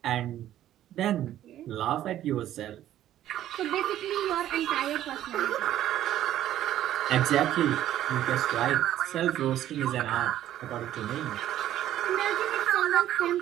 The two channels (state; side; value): quieter; left; 12.4 dB